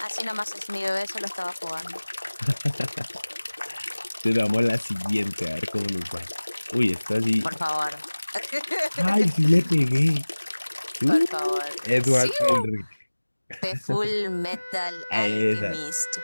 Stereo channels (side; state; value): both; inverted; correlation -1.00